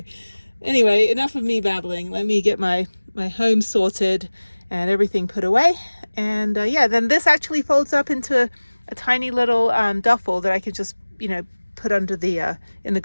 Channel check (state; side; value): inverted; both; correlation -1.00